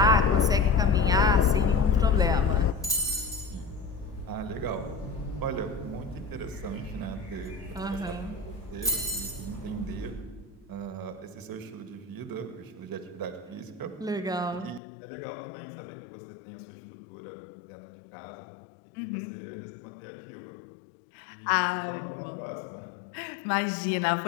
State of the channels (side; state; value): right; drops out; at 14.8 s